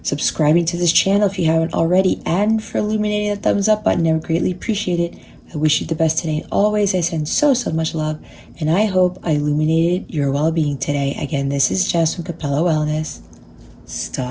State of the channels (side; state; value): both; identical; correlation 1.00